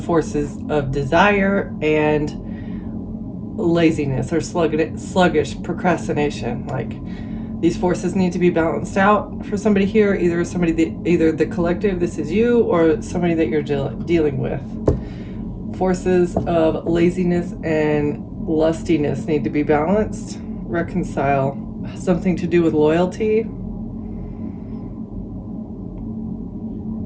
of desire and laziness or sluggish procrastination. Like, these forces need to be balanced out for somebody here. Either the collective, this is you, or somebody that you're dealing with. Forces of laziness and lustiness need to be balanced, reconcile. Something to do with loyalty.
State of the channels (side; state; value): both; identical; correlation 1.00